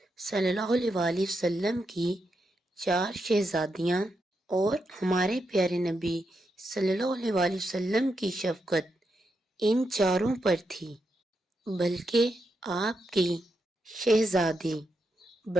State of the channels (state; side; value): normal; both; correlation 0.84